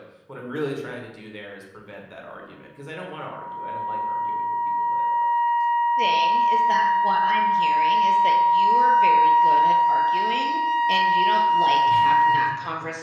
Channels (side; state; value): both; identical; correlation 1.00